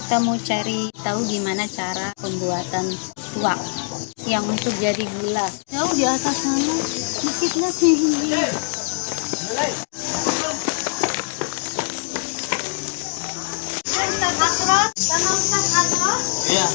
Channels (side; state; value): right; silent; digital silence